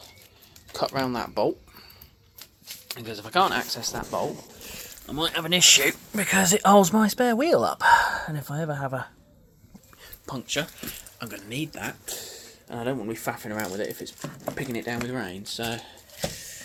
cut round that bolt, because if I can't access that bolt I might have an issue, because it holds my spare wheel up, and if I ever have a puncture I'm going to need that, and I don't want to be faffing around with it if it's picking it down with rain. So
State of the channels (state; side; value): identical; both; correlation 1.00